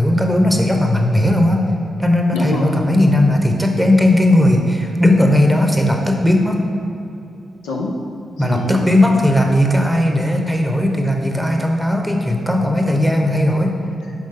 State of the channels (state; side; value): normal; both; correlation 0.88